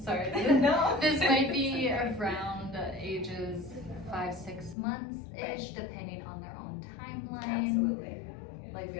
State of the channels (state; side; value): drops out; right; at 4.8 s